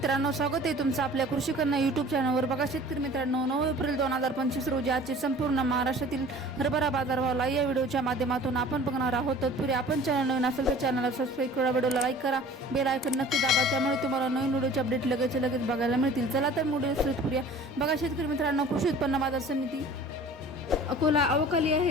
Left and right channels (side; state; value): both; normal; correlation 0.46